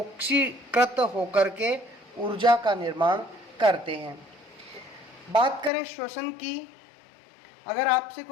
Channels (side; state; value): right; drops out; at 5.7 s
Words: होकर के ऊर्जा का निर्माण करते हैं। बात करें श्वसन की, अगर आपसे